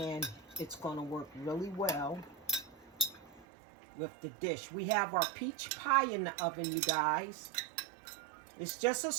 it's going to work really well with the dish. We have our peach pie in the oven, you guys. It's just a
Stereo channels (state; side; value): drops out; left; at 3.5 s